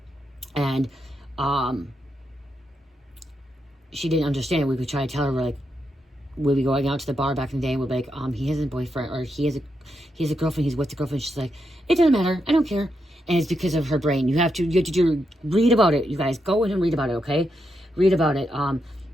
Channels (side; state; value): both; normal; correlation 0.83